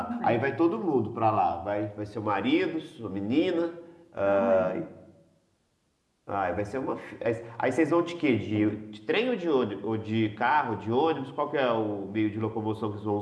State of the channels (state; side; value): identical; both; correlation 1.00